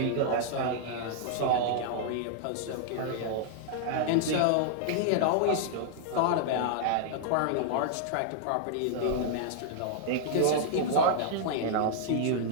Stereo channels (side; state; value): both; different; correlation -0.01